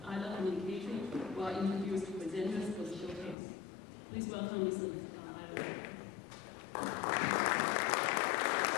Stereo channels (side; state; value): right; drops out; at 3.4 s